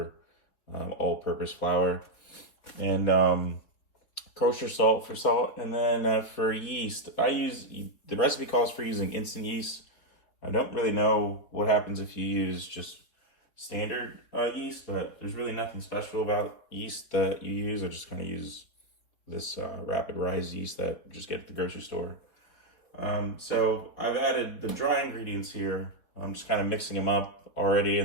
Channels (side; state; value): right; late; 4.1 ms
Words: all-purpose flour. And kosher salt for salt. And then for yeast, the recipe calls for using instant yeast. I don't really know what happens if you use just standard yeast, but there's really nothing special about yeast that you use. I just kind of use this rapid rise yeast that you just get at the grocery store. So I've added the dry ingredients here. I'm just kind of mixing them up already,